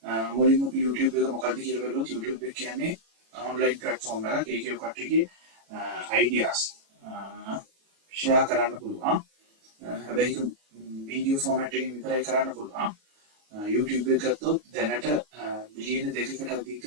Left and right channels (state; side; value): late; left; 36 ms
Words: මුලින්ම YouTube එක මොකක්ද කියලා බලුවොත් YouTube එක කියන්නේ online platform එකක්. ඒකේ කට්ටියගේ ideas share කරන්න පුළුවන්. හැබැයි ඒක වීඩියෝ ෆෝමැට් එකකින් විතරයි කරන්න පුළුවන්. YouTube එක ගත්තොත් දැනට බිලියන 2කට අධික